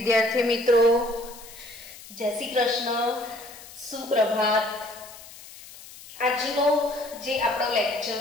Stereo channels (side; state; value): left; noise; hiss, 18 dB below the sound